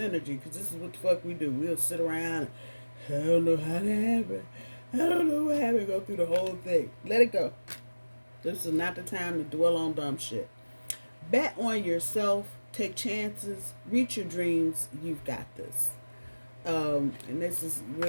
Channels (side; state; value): both; inverted; correlation -1.00